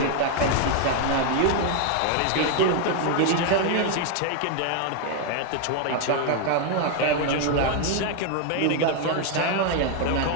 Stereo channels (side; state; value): both; different; correlation 0.00